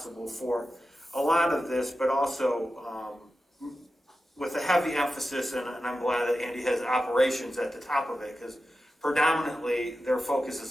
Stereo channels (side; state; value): both; normal; correlation 0.92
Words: for a lot of this, but also with a heavy emphasis, and I'm glad that Andy has operations at the top of it, because predominantly their focus